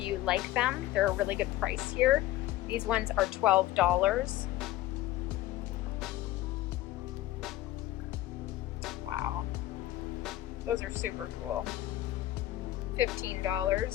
like them. They're a really good price here. These ones are $12. Wow. Those are super cool. $15.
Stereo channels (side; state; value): right; quieter; 15.4 dB